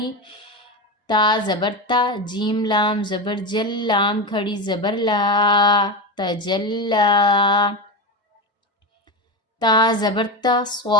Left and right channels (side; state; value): both; normal; correlation 0.18